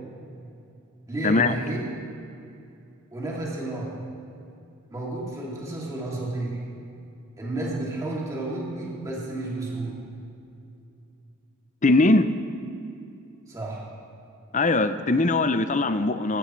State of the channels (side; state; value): both; normal; correlation 0.48